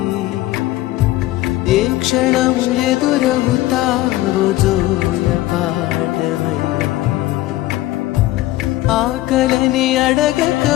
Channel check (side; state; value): right; quieter; 16.6 dB